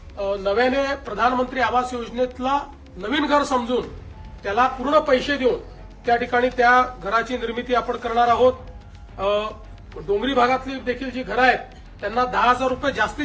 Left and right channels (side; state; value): both; identical; correlation 1.00